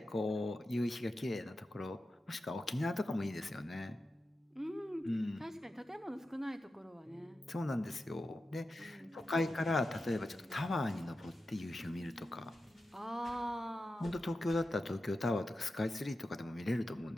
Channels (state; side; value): normal; both; correlation 0.91